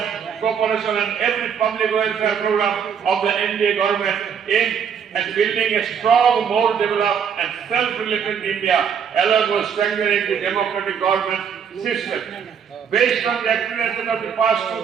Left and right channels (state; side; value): quieter; left; 7.4 dB